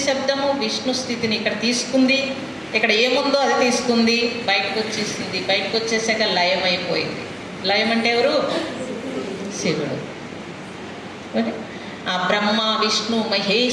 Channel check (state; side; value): identical; both; correlation 1.00